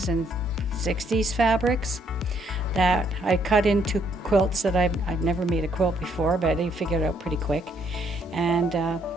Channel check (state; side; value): normal; both; correlation 0.70